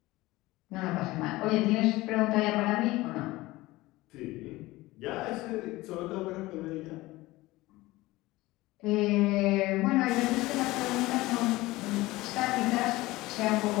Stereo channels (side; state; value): right; quieter; 19.3 dB